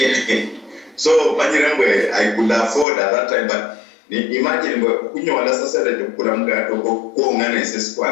so manyerengwe I could afford at that time but imagine kunyola sasa de kula mgati ko ngane sesi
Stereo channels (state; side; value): drops out; right; at 2.9 s